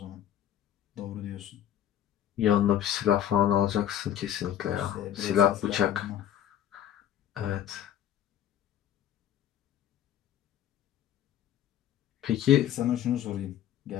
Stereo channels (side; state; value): right; quieter; 10.9 dB